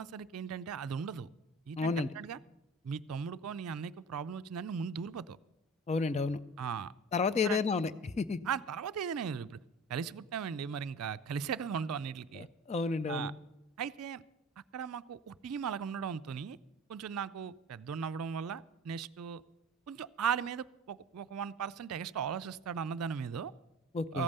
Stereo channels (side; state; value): both; normal; correlation 0.40